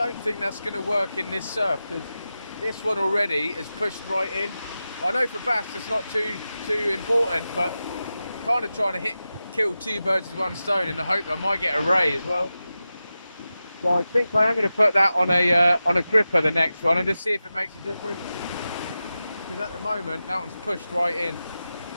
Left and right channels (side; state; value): both; inverted; correlation -0.93